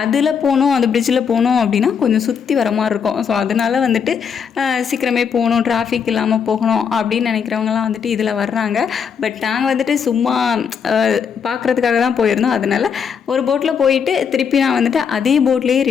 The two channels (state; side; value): quieter; right; 6.9 dB